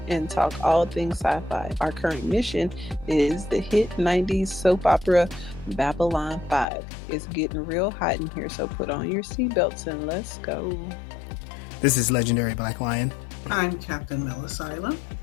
and talk all things sci-fi. Our current mission is the hit 90s soap opera Babylon 5. It's getting real hot in here, so put on your seatbelts and let's go. This is Legendary Black Lion. I'm Captain Melisila.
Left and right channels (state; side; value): drops out; right; at 6.7 s